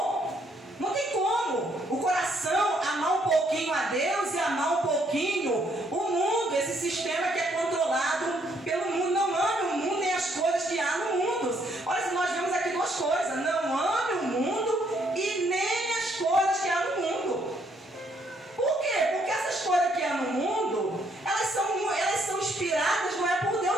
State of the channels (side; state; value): both; normal; correlation 0.70